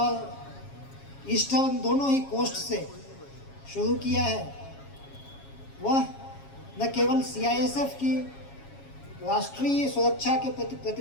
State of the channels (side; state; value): right; late; 7.3 ms